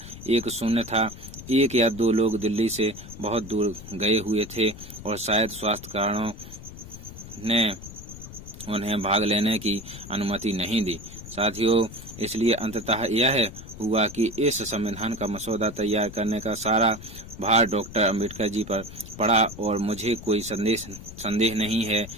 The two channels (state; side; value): noise; left; rumble, 14 dB below the sound